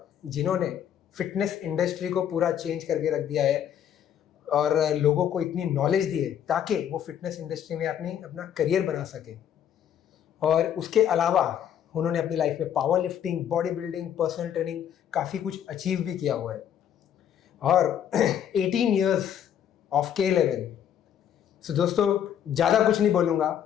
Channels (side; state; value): right; quieter; 9.6 dB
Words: जिन्होंने फिटनेस इंडस्ट्री को पूरा चेंज करके रख दिया है और लोगों को इतनी नॉलेज दी है ताकि वो फिटनेस इंडस्ट्री में अपना करियर बना सके। और उसके अलावा उन्होंने अपनी लाइफ में power lifting, body building, personal training काफ़ी कुछ अचीव भी किया हुआ है। और 18 ईयर्स ऑफ K11। सो दोस्तों, ज़्यादा कुछ नहीं बोलूँगा।